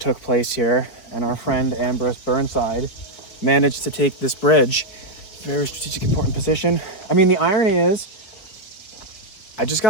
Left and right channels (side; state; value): right; late; 4.8 ms